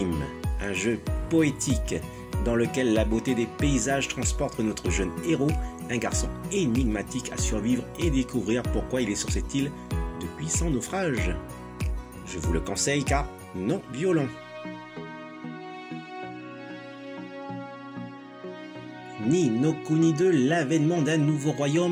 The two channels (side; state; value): both; identical; correlation 1.00